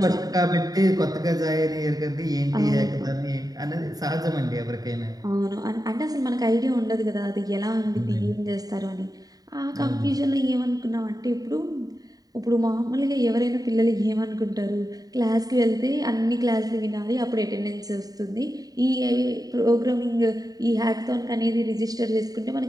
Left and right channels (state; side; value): late; left; 0.18 ms